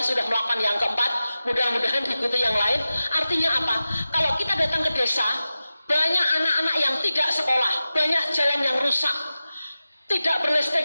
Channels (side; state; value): both; inverted; correlation -0.94